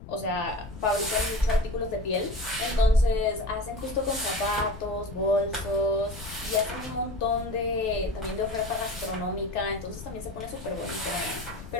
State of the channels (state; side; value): noise; left; rumble, 13 dB below the sound